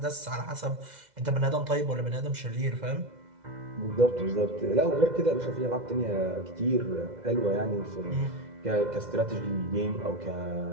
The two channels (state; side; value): late; left; 2.0 ms